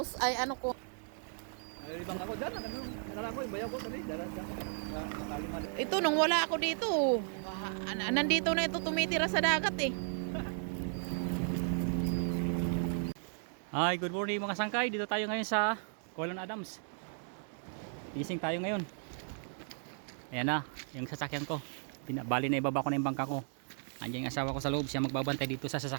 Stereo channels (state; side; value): silent; left; 54 dB below the other